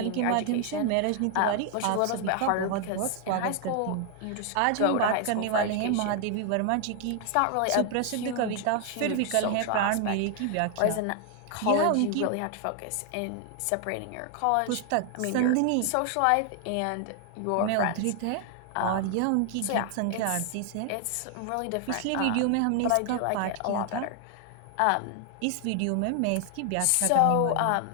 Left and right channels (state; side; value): different; both; correlation 0.00